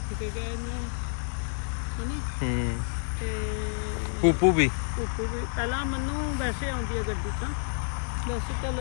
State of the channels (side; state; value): right; silent; digital silence